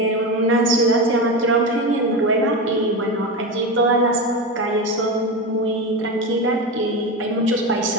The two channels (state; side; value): normal; both; correlation 0.19